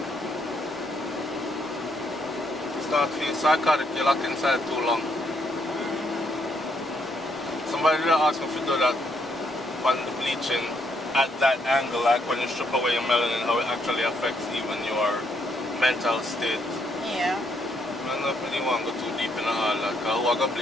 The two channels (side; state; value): both; normal; correlation 0.73